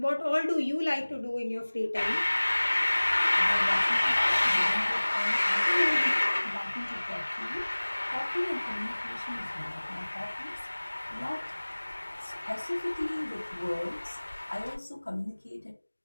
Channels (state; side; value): inverted; both; correlation -1.00